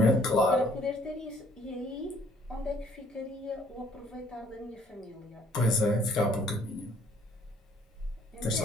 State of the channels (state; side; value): normal; both; correlation 0.61